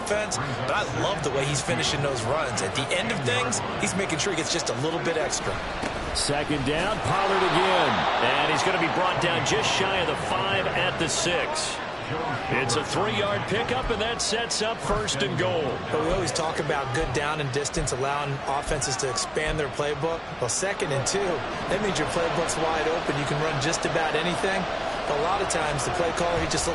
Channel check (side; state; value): both; identical; correlation 1.00